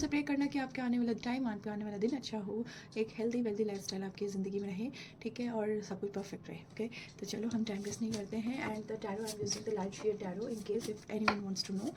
प्रे करना कि आपके आने वाला टाइम, आपके आने वाला दिन अच्छा हो, एक हेल्दी वेल्दी लाइफस्टाइल आपकी ज़िंदगी में रहे, ठीक है, और सब कुछ परफेक्ट रहे। ओके, तो चलो हम टाइम वेस्ट नहीं करते हैं। And the tarot I am using the Light Seer tarot in case if anyone wants to know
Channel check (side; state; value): both; identical; correlation 1.00